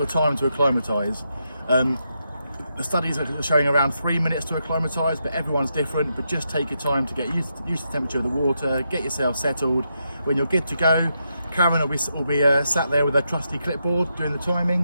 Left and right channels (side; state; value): both; inverted; correlation -0.83